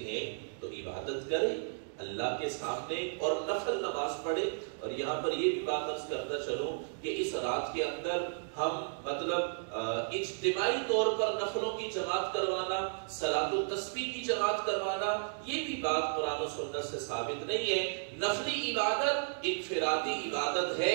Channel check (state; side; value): silent; left; digital silence